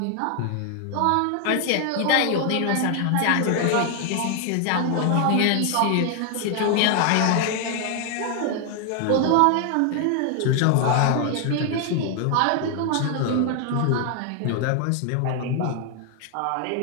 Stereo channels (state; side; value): different; both; correlation 0.00